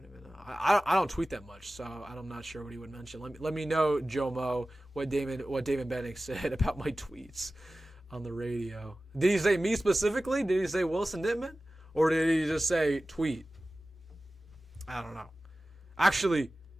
even know. I don't tweet that much, so I'm not sure what he would mention. Let me know, Joe Mo, what Damon Benning said about my tweets on the radio. Did he say me specifically? Did he say Wilson Dittman? Or did he just say tweet? I don't know. Actually,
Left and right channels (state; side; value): normal; both; correlation 0.96